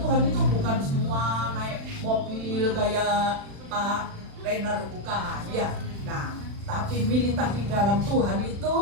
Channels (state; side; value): late; left; 36 ms